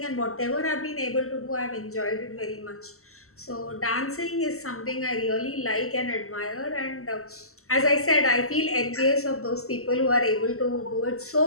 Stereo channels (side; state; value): right; late; 0.63 ms